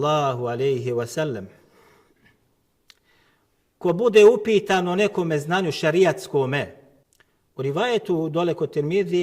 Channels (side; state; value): both; identical; correlation 1.00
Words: alejhi ve sellem: ko bude upitan o nekome znanju šarijatskome, u rivajetu dole kod